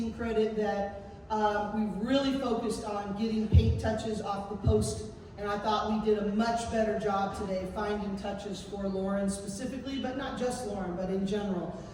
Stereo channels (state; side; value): identical; both; correlation 1.00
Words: credit that we've really focused on getting paint touches off the post, and I thought we did a much better job today finding touches for Lauren specifically, but not just Lauren, but in general.